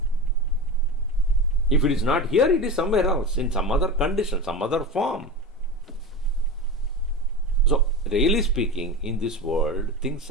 If it is not here, it is somewhere else, in some other condition, some other form. So, really speaking, in this world, things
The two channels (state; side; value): normal; both; correlation 0.26